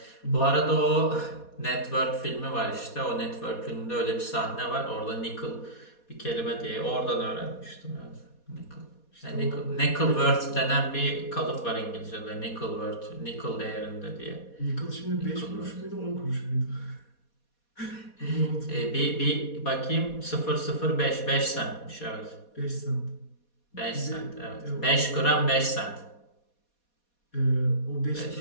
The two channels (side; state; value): right; late; 4.2 ms